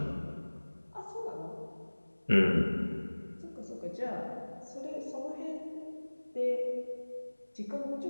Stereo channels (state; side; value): inverted; both; correlation -1.00